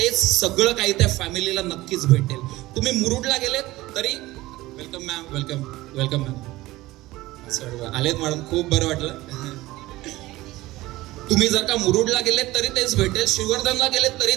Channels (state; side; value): quieter; left; 18.2 dB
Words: सगळं काही त्या फॅमिलीला नक्कीच भेटेल. तुम्ही मुरुडला गेलेत तरी वेलकम मॅम, वेलकम मॅम, आलेत मॅडम, खूप बरं वाटलं. तुम्ही जर का मुरुडला गेलेत तरी तेच भेटेल, श्रीवर्धनला गेलेत तरी